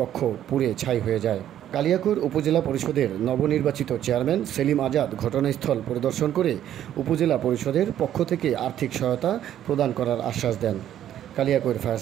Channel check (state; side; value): quieter; left; 11.1 dB